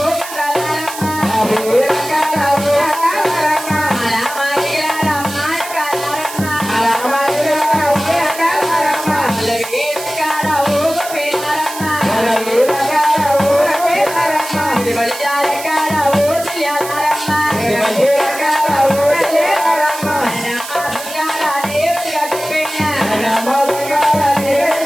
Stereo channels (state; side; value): noise; right; hiss, 11 dB below the sound